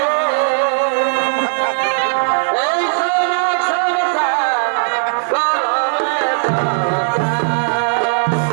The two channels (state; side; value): silent; left; 64 dB below the other